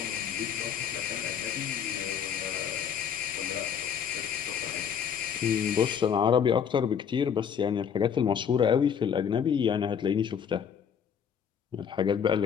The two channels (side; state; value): right; quieter; 7.7 dB